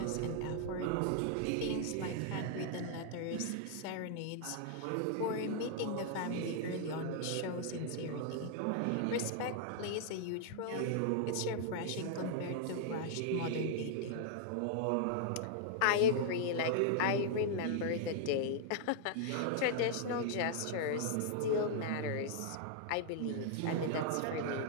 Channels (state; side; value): different; both; correlation -0.01